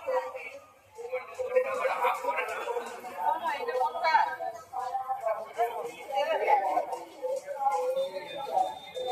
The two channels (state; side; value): identical; both; correlation 1.00